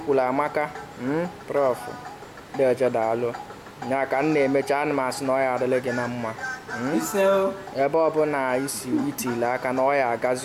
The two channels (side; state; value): both; identical; correlation 1.00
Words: amaka Prof Dioje daalụ nya ka m na-emecha ana m asị na ọ ya adịla gị na mma ebe ọbụla isi itile aka na ọ ya